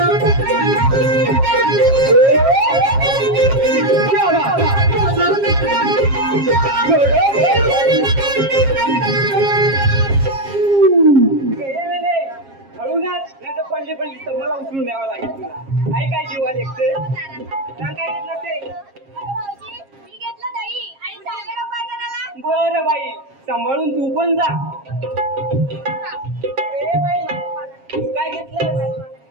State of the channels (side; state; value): left; late; 7.4 ms